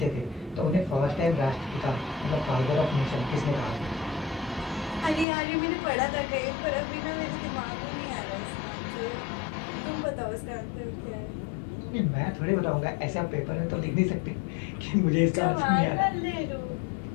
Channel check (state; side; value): drops out; right; at 5.2 s